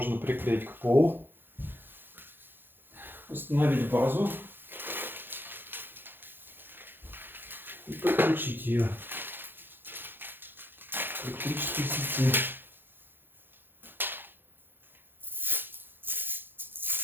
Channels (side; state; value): left; late; 0.099 ms